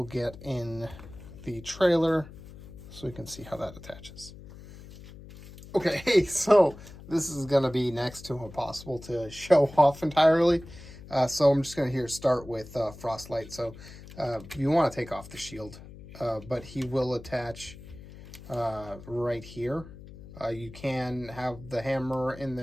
get in the trailer so we can see how that attaches. Okay, so this is going to be next to impossible to show off entirely. So I'm just going to start with Frostlight. So you want to take off the shield, but he will attach right here. You can have the hammer in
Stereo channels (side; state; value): left; noise; hum, 17 dB below the sound